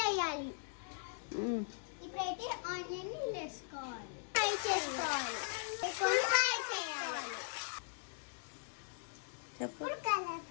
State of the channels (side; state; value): right; silent; 51 dB below the other